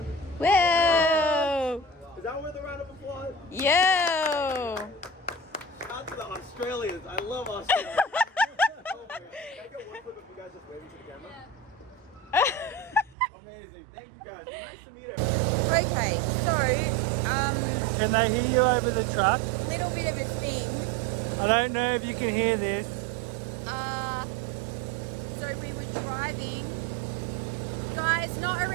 Whoa! Is that worth a round of applause? Yo! Shout out to the Australians. I love Australia. Oh my God. Can I get one clip of you guys just waving to the camera? Amazing. Thank you guys. Nice to meet everyone. Okay, so, Can they hear you over the truck? little bit of a thing. I don't know if you can hear this. So we were driving. Guys, not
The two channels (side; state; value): left; drops out; at 13.2 s